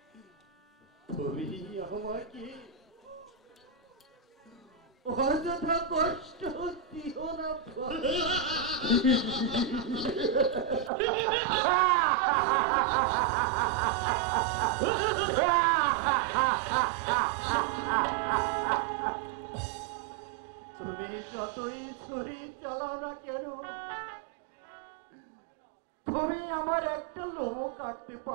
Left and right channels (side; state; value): left; drops out; at 10.9 s